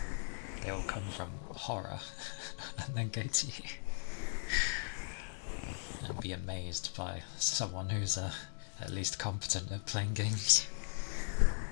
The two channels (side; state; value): right; silent; digital silence